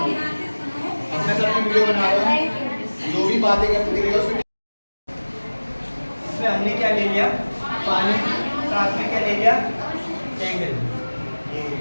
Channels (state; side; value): inverted; both; correlation -1.00